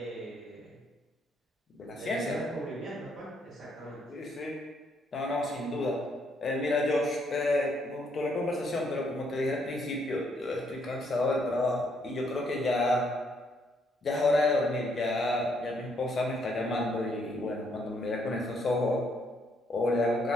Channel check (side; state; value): both; normal; correlation 0.72